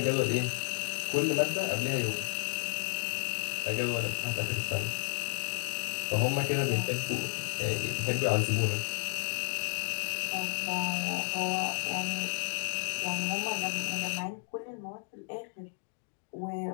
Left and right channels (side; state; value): right; silent; digital silence